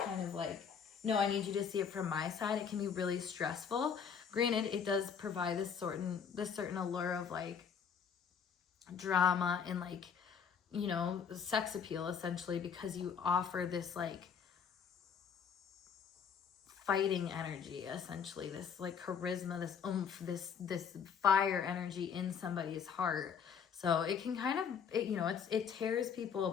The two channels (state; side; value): quieter; right; 7.0 dB